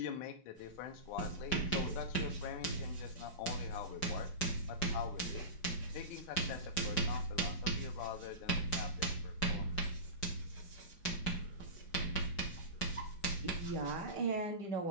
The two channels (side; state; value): right; late; 5.4 ms